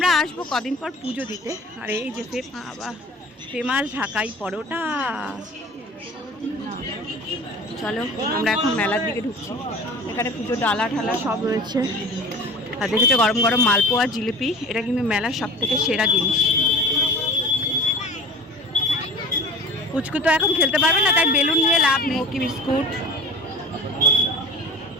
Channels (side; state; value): both; normal; correlation 0.38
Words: আসবো কদিন পর পুজো দিতে। আর এই যে ফেমাস ঢাকাই পরোটা। চলো আমরা এখন মেলার দিকে ঢুকছি। এখানে পুজো ডালা ঢালা সব রয়েছে। আর দেখেছো গরম গরম মালপোয়া জিলিপি, এটা কিন্তু মেলার সব থেকে সেরা জিনিস। পুচকু তো এখন খেলতে পারবে না, তাই বেলুন নিয়ে লাভ নেই। কি বিস্কুট